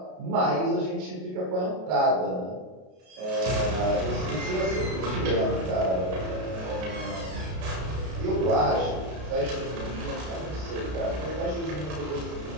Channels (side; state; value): left; late; 32 ms